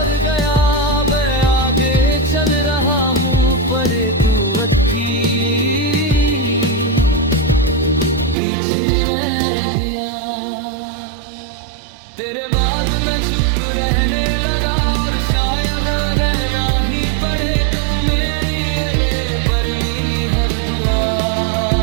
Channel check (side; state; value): left; drops out; at 8.3 s